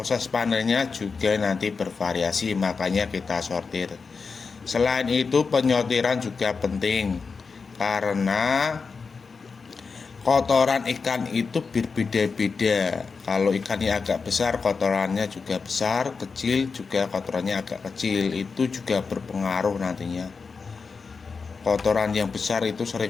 panennya juga nanti bervariasi, makanya kita sortir. Selain itu penyortiran juga penting, karena kotoran ikan itu berbeda-beda. Kalau ikannya agak besar, kotorannya juga besar, kecil juga kotorannya agak kecil. Itu juga berpengaruh nantinya. Kotoran yang besar itu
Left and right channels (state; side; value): quieter; right; 4.9 dB